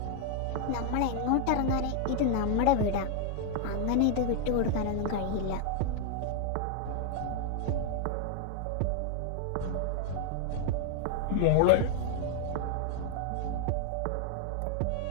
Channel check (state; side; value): different; both; correlation 0.00